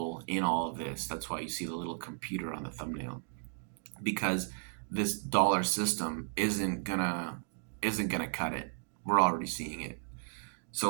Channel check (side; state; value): left; silent; digital silence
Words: in all of this. That's why you see the little computer on the thumbnail, because this dollar system isn't gonna cut it. We're already seeing it.